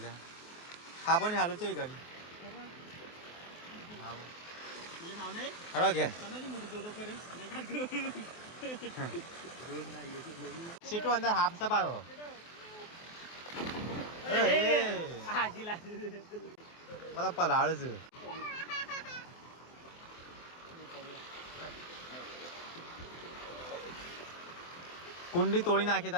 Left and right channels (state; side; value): late; right; 24 ms